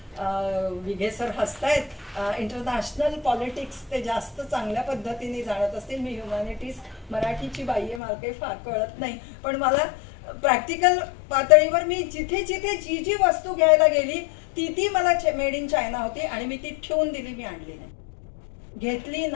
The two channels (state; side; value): drops out; right; at 8.0 s